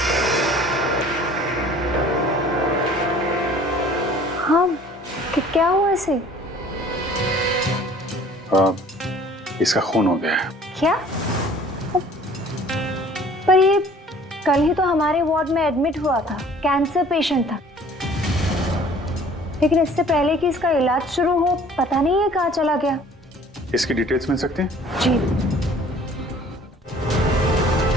हाँ, क्या हुआ इसे? इसका खून हो गया है। क्या? पर ये कल ही तो हमारे वार्ड में एडमिट हुआ था, कैंसर पेशेंट था। लेकिन इससे पहले कि इसका इलाज शुरू हो, पता नहीं है कहाँ चला गया। इसकी डिटेल्स मिल सकती हैं? जी।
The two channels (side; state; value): both; normal; correlation 0.52